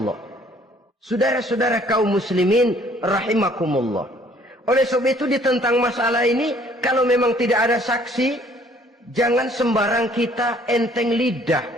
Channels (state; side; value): normal; both; correlation 0.59